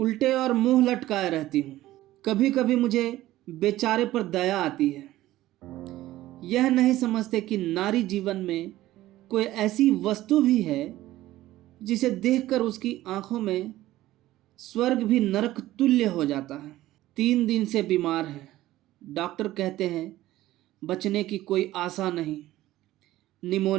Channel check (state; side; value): quieter; left; 15.6 dB